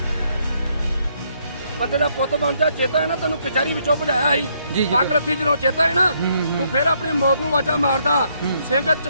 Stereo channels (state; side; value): inverted; both; correlation -0.72